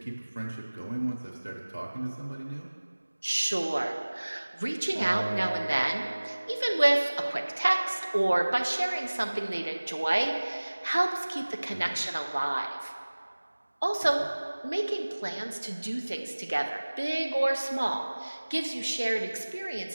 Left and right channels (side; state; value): both; inverted; correlation -1.00